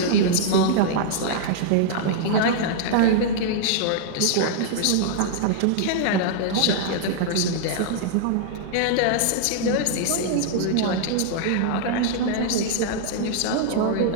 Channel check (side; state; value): both; different; correlation -0.01